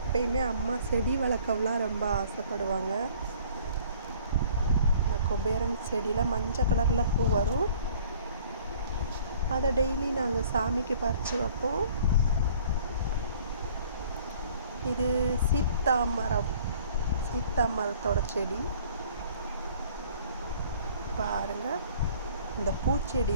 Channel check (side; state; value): both; inverted; correlation -0.53